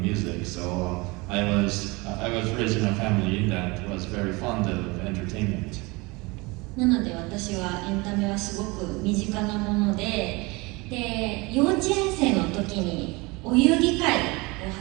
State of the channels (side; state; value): left; quieter; 25.2 dB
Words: music, so I was raised in a family that was very fond of entertainment. なので私はエンタメはすごく身近なもので、幼稚園生の時にお遊戯会を